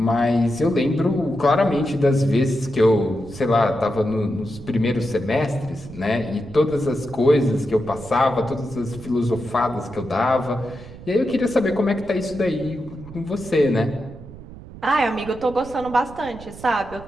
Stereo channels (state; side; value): noise; right; rumble, 16 dB below the sound